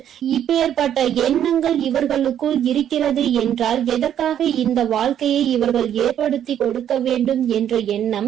இப்பேற்பட்ட எண்ணங்கள் இவர்களுக்குள் இருக்கிறது என்றால் எதற்காக இந்த வாழ்க்கையை இவர்கள் ஏற்படுத்தி கொடுக்க வேண்டும் என்ற எண்ணம்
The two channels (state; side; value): quieter; left; 10.0 dB